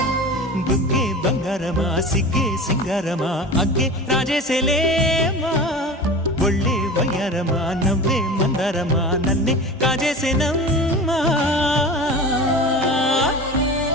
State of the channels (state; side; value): normal; both; correlation 0.33